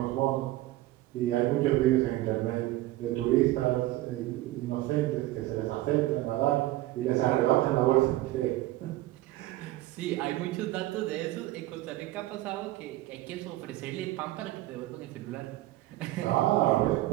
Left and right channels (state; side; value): quieter; left; 16.8 dB